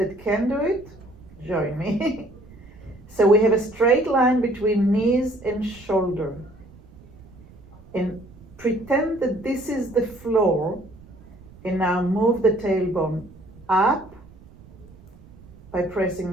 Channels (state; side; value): noise; right; rumble, 22 dB below the sound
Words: can do it, join me. So we have a straight line between knees and shoulder. And pretend that this is the floor, and now move the tailbone up by pressing